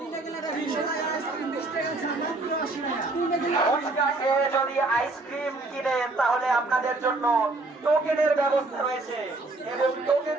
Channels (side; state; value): left; quieter; 3.1 dB